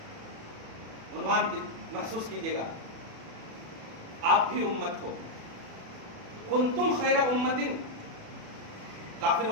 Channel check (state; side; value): late; left; 36 ms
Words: عنوان محسوس کیجئے گا، آپ بھی امت ہو۔ کنتم خیر امت،